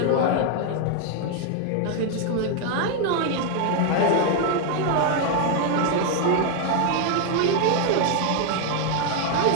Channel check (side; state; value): both; different; correlation 0.00